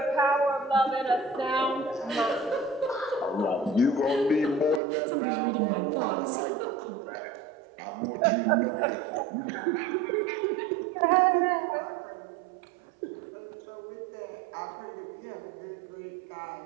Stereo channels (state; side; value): drops out; left; at 4.8 s